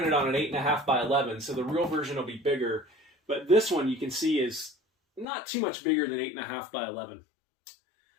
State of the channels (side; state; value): right; drops out; at 5.2 s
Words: on an 8.5 by 11, so the real version will be bigger. But this one you can see is not too much bigger than 8.5 by 11.